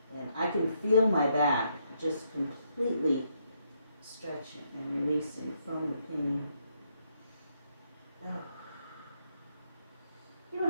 And I can feel my back just completely stretching and releasing from the pain. Oh. You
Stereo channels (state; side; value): inverted; both; correlation -0.75